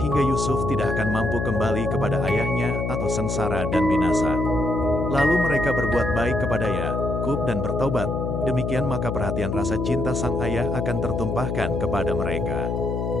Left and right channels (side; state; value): left; noise; hum, 1 dB below the sound